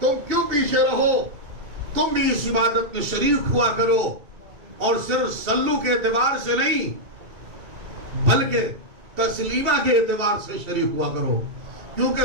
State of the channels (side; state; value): left; late; 2.7 ms